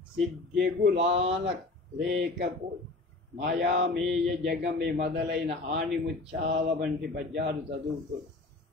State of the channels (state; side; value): quieter; right; 3.2 dB